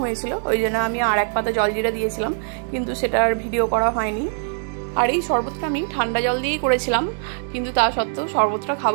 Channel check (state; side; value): silent; left; 56 dB below the other